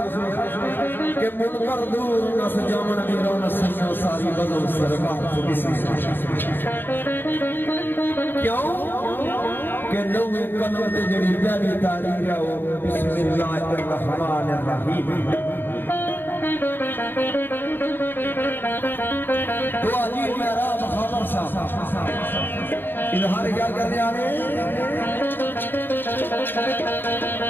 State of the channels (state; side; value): late; right; 0.098 ms